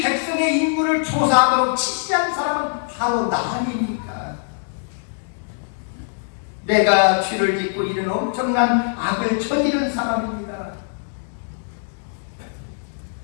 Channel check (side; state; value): right; silent; digital silence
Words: 백성의 인물을 조사하도록 지시한 사람은 바로 나 아닙니까? 내가 죄를 짓고 이런 엄청난 악을 저지른 사람입니다.